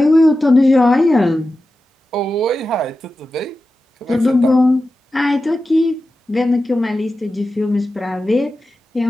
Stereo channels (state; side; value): normal; both; correlation 0.93